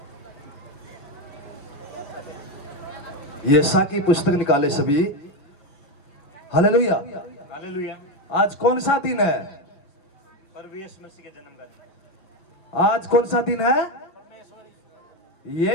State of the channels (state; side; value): late; right; 5.3 ms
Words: यशा की पुस्तक निकाले सभी। हालेलुया। हालेलुया। आज कौन सा दिन है? प्रभु यीशु मसीह के जन्म का दिन। आज कौन सा दिन है?